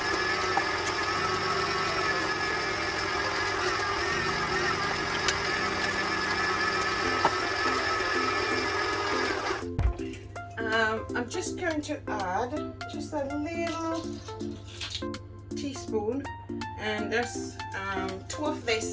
I'm just going to add just a little teaspoon, and there's 2 of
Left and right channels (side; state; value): both; identical; correlation 1.00